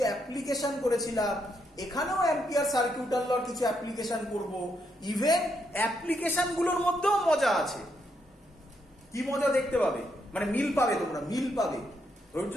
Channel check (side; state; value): both; normal; correlation 0.78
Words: অ্যাপ্লিকেশন করেছিলাম, এখানেও অ্যাম্পিয়ার সার্কিউটাল লর কিছু অ্যাপ্লিকেশন করব। ইভেন অ্যাপ্লিকেশন গুলোর মধ্যেও মজা আছে। কি মজা দেখতে পাবে, মানে মিল পাবে, তোমরা মিল পাবে। ধৈর্য